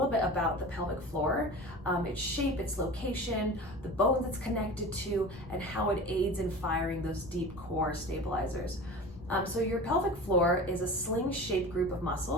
bit about the pelvic floor, its shape, its location, the bones it's connected to, and how it aids in firing those deep core stabilizers. So your pelvic floor is a sling-shaped group of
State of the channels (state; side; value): normal; both; correlation 0.35